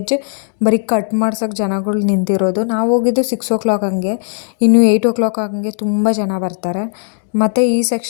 ಬರೀ ಕಟ್ ಮಾಡ್ಸೋಕ್ಕೆ ಜನಗಳು ನಿಂತಿರೋದು. ನಾವು ಹೋಗಿದ್ದು 6 o'clock ಹಂಗೆ, ಇನ್ನು 8 o'clock ಹಂಗೆ ತುಂಬ ಜನ ಬರ್ತಾರೆ. ಮತ್ತು ಈ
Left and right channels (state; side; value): silent; right; digital silence